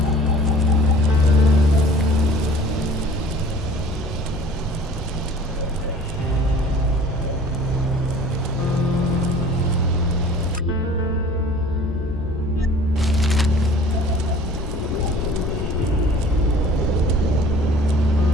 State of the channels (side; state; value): both; normal; correlation 0.48